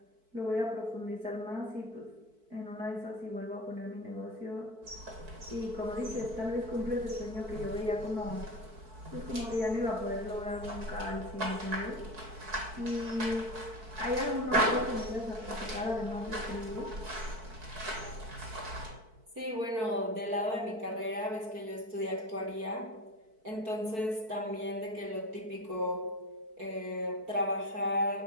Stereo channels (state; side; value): late; left; 4.6 ms